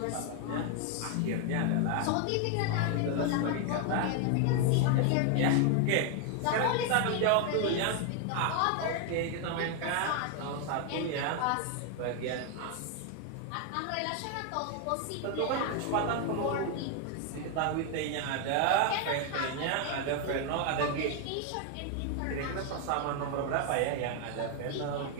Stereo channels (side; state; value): both; different; correlation 0.01